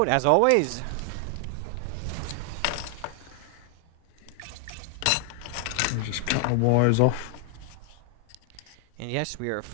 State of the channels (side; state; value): both; different; correlation 0.00